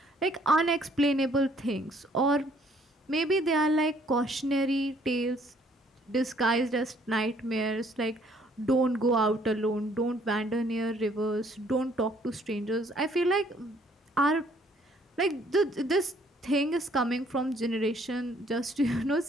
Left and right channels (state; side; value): normal; both; correlation 0.63